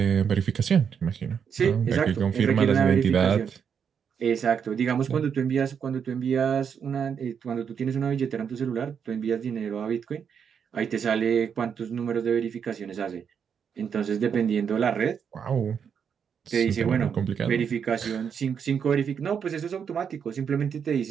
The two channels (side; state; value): left; quieter; 7.2 dB